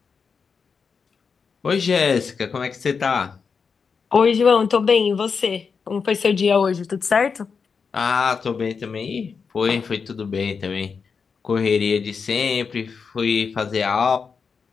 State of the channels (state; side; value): quieter; right; 5.6 dB